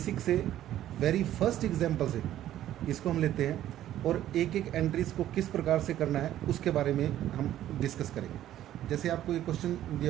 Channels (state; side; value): quieter; left; 12.5 dB